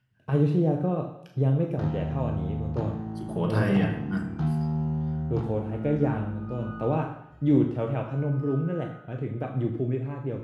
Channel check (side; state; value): both; identical; correlation 1.00